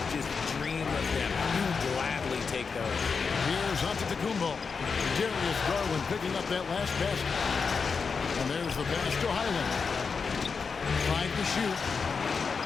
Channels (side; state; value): right; quieter; 5.3 dB